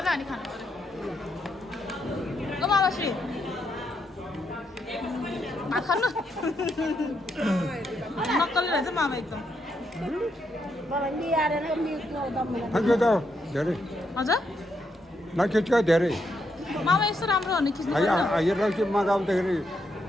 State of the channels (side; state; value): both; normal; correlation 0.79